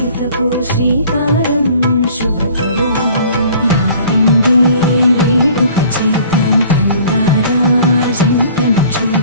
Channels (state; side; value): inverted; both; correlation -0.51